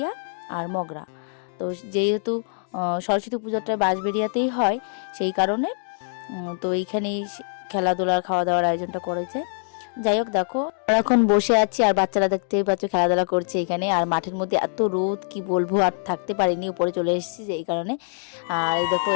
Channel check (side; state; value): right; silent; digital silence